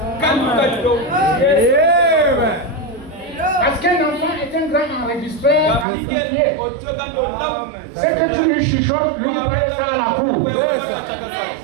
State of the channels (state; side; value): drops out; left; at 5.9 s